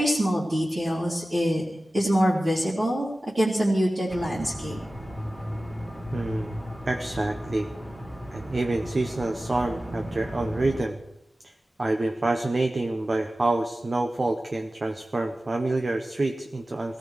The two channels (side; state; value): both; normal; correlation 0.96